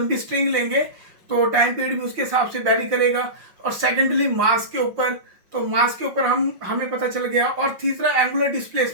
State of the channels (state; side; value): late; left; 5.6 ms